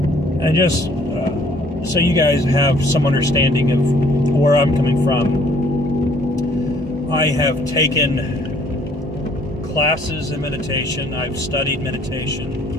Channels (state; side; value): normal; both; correlation 0.60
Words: And just so you guys have some understanding of where I'm coming from, I have taken classes in meditation. I've studied